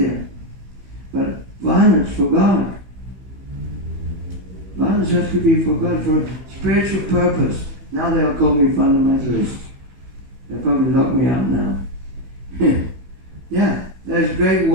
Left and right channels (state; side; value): late; left; 16 ms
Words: there. But violence for God. Violence has to be for God, for a spiritual purpose. Now they'll call me fundamentalist. They'll probably lock me out now. Yeah, there's great